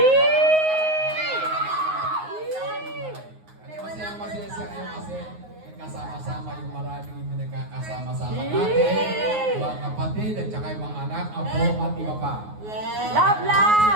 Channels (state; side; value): late; left; 9.5 ms